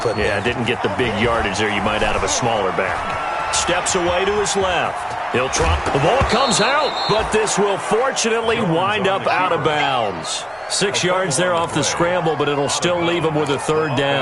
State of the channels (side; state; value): both; identical; correlation 1.00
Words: put there. Yeah, didn't get the big yardage there you might out of a smaller back. Steps away to his left. He'll try. The ball comes out, but this will fortunately wind up out of bounds. 6 yards there off the scramble, but it'll still leave him with a third